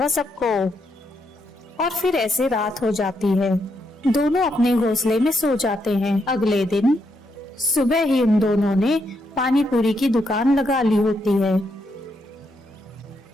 सबको। और फिर ऐसे रात हो जाती है। दोनों अपने घोंसले में सो जाते हैं। अगले दिन सुबह ही उन दोनों ने पानी पूरी की दुकान लगा ली होती है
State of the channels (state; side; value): normal; both; correlation 0.79